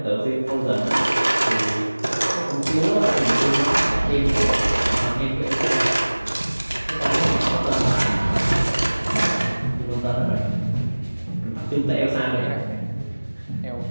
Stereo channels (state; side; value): inverted; both; correlation -1.00